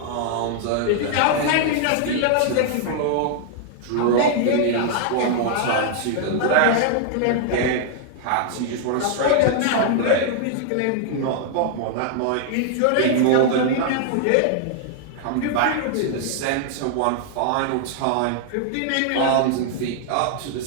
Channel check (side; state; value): both; different; correlation 0.00